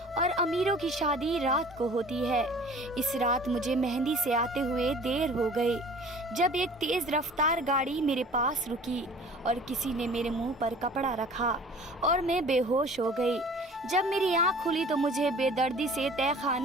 और अमीरों की शादी रात को होती है। इस रात मुझे मेहंदी से आते हुए देर हो गई जब एक तेज़ रफ्तार गाड़ी मेरे पास रुकी और किसी ने मेरे मुंह पर कपड़ा रखा और मैं बेहोश हो गई। जब मेरी आँख खुली तो मुझे बेदर्दी से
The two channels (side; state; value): both; normal; correlation 0.47